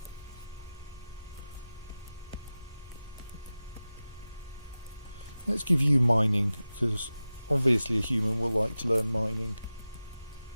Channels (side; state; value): both; inverted; correlation -0.95